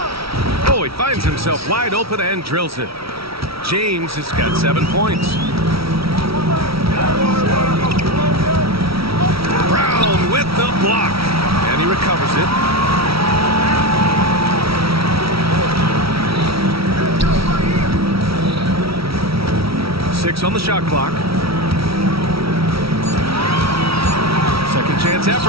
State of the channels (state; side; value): late; left; 0.75 ms